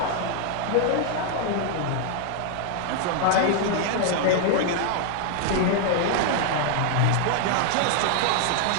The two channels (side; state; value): both; different; correlation 0.00